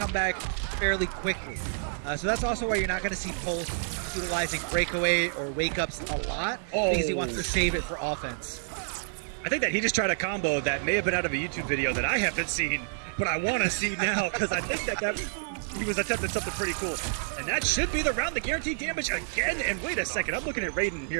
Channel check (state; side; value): silent; left; 59 dB below the other